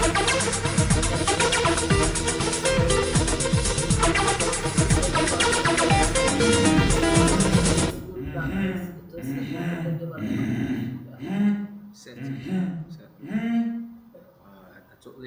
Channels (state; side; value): identical; both; correlation 1.00